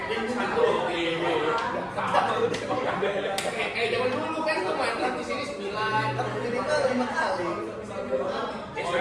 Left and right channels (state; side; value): identical; both; correlation 1.00